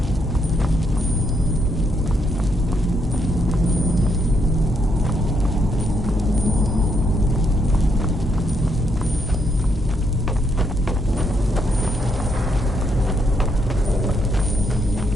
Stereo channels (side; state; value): both; normal; correlation 0.76